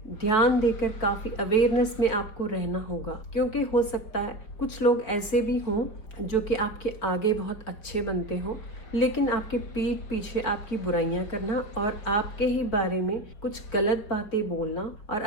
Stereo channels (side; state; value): right; late; 4.6 ms